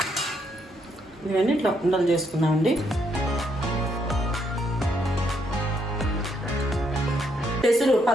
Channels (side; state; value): both; normal; correlation 0.75